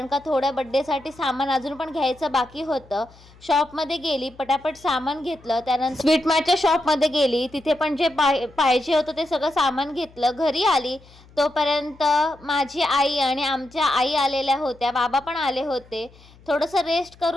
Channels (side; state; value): left; noise; hum, 25 dB below the sound